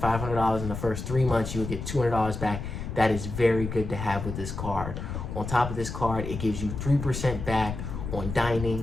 $500 in the first 3 months, you will get $200 back. That is very good to have with this card. On top of this card, it gives you 3% back on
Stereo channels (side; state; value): left; noise; rumble, 6 dB below the sound